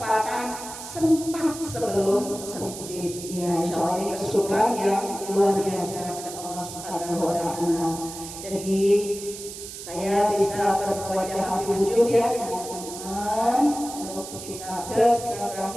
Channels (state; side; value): noise; right; hiss, 11 dB below the sound